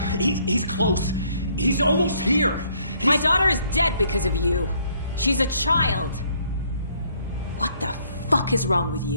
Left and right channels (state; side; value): inverted; both; correlation -0.65